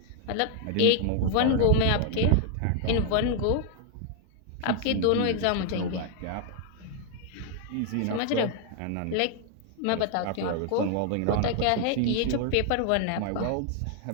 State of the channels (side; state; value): both; different; correlation 0.00